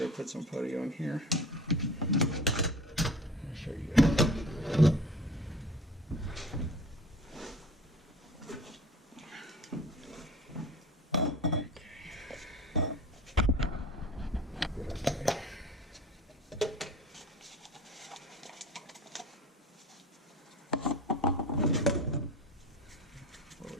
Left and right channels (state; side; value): normal; both; correlation 0.39